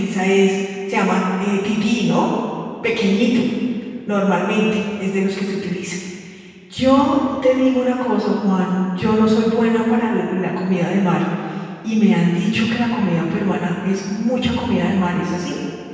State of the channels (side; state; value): both; identical; correlation 1.00